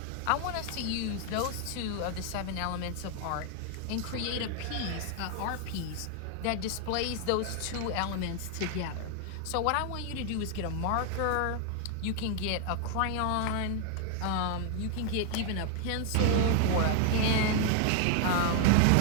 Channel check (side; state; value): both; different; correlation 0.00